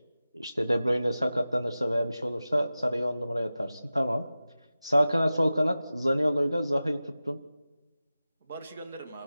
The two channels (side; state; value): both; inverted; correlation -0.95